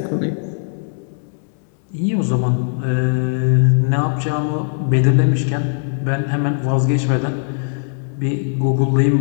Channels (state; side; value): silent; right; digital silence